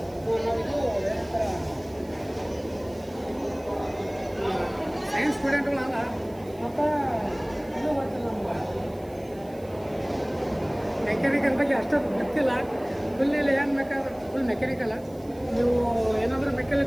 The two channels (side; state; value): right; noise; hiss, 26 dB below the sound